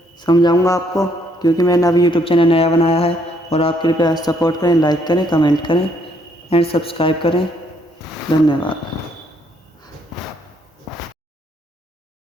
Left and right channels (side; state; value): both; normal; correlation 0.69